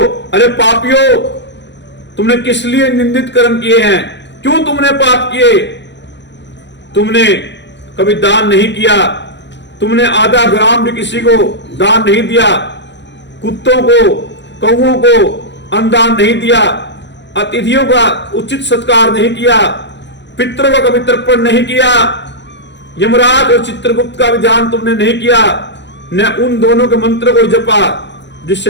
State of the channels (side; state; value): right; late; 0.52 ms